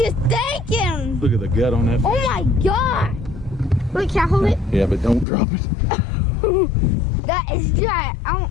thinking? Look at the gut on that fish. Oh my God. Wait, can I hold it? Yeah, but don't drop it. That is giant.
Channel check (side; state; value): right; drops out; at 5.2 s